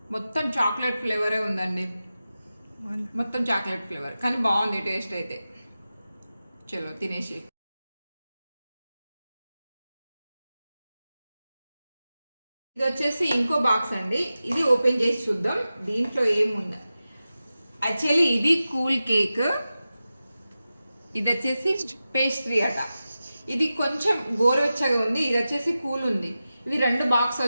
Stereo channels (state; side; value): inverted; both; correlation -0.94